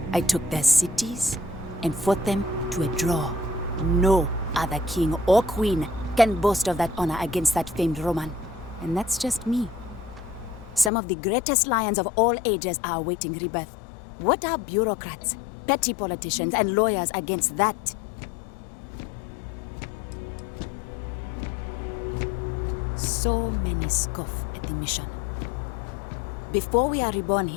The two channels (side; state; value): right; drops out; at 10.9 s